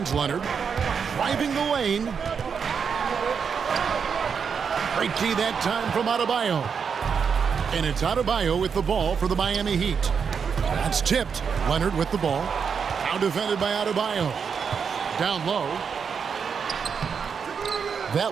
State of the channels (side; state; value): left; quieter; 6.4 dB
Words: Leonard. Driving the lane. Great key that time from Adebayo. And it's Adebayo with the ball for the Miami Heat. That's tipped. Leonard with the ball. Now defended by Adebayo. Down low.